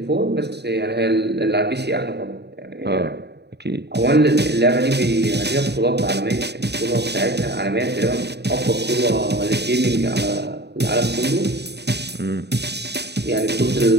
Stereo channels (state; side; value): late; left; 0.49 ms